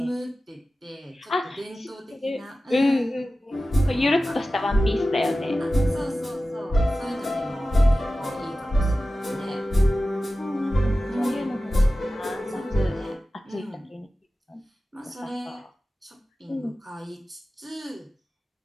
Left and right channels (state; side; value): normal; both; correlation 0.95